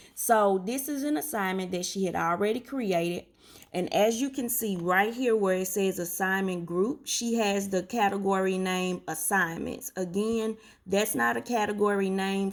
So this is an assignment that she had already created. And as you can see right here where it says assignment group, she has the category name assignments. Again, that's not a category name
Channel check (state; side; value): identical; both; correlation 1.00